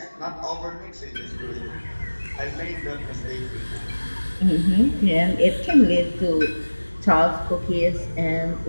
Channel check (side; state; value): both; inverted; correlation -1.00